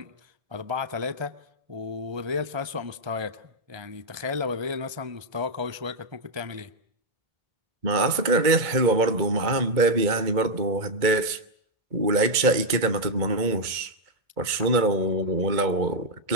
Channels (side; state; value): left; late; 2.2 ms